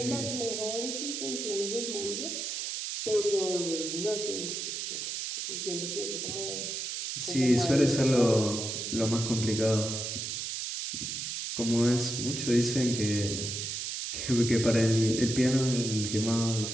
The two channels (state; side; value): noise; right; hiss, 4 dB below the sound